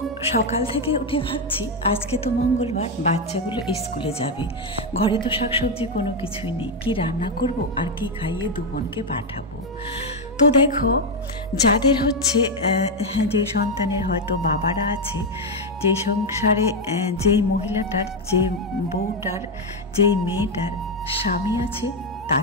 সকাল থেকে উঠে ভাবছি আজকে তো মঙ্গলবার, বাচ্চাগুলো স্কুলে যাবে, ঘরে তো শাকসবজি কোনো কিছুই নেই, কি রান্না করব আর কি খাইয়ে দু বোনকে পাঠাবো। তো দেখো যাদের হচ্ছে যে সন্তানের হয়তো বাবারা আছে, যে সংসারে যেই মহিলাটার, যে বউটার, যেই মেয়েটার স্বামী আছে,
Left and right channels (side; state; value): both; normal; correlation 0.04